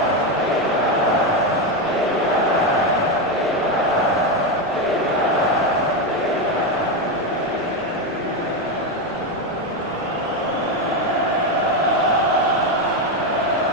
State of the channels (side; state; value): right; noise; rumble, 27 dB below the sound